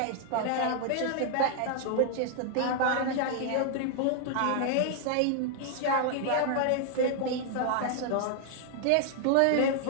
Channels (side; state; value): both; different; correlation 0.00